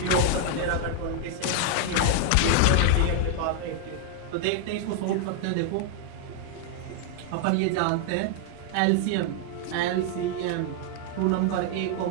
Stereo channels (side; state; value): both; different; correlation 0.00